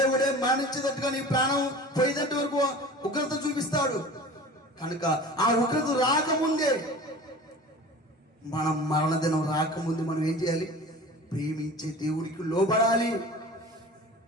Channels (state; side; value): normal; both; correlation 0.39